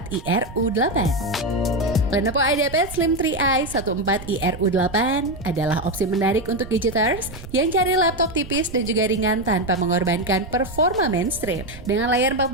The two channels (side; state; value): right; noise; rumble, 14 dB below the sound